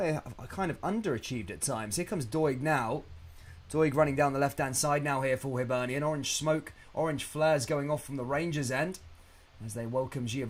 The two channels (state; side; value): identical; both; correlation 1.00